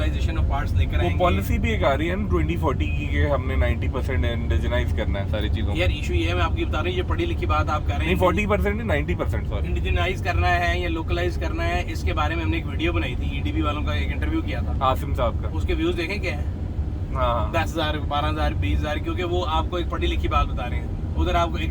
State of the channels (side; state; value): both; identical; correlation 1.00